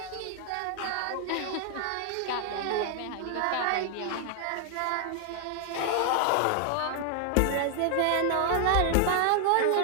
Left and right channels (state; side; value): different; both; correlation 0.00